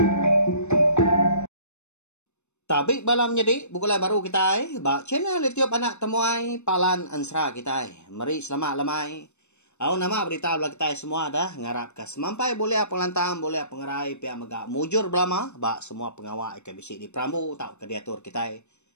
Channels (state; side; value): late; right; 0.82 ms